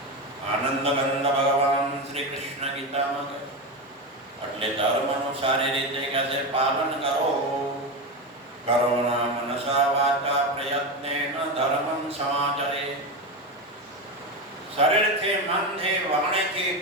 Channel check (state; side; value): normal; both; correlation 0.17